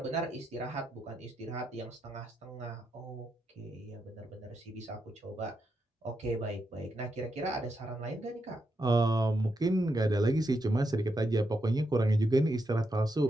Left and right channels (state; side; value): normal; both; correlation 0.83